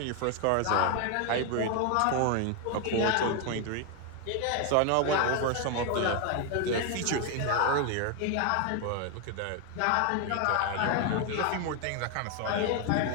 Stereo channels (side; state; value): both; different; correlation 0.01